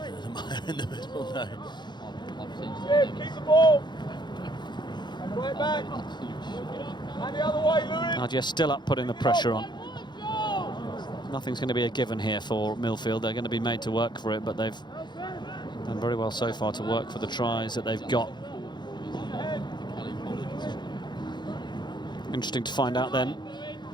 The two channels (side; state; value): right; late; 0.21 ms